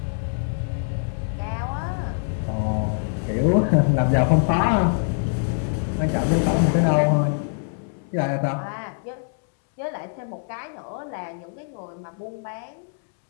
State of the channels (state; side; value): silent; right; digital silence